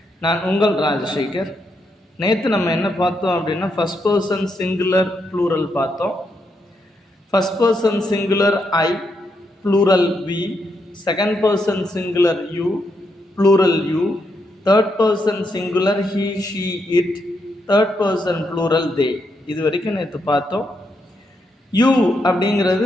நான் உங்கள் ராஜசேகர். நேற்று நம்ம என்ன பார்த்தோம் அப்படின்னா ஃபஸ்ட் பர்சன் சிங்குலர் ப்ளூரல் பார்த்தோம். First person singular I, plural we, second person singular you, plural you, third person singular he, she, it, third person plural they. இது வரைக்கும் நேற்று பார்த்தோம். யூ அப்படிங்கிறது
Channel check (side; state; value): both; normal; correlation 0.80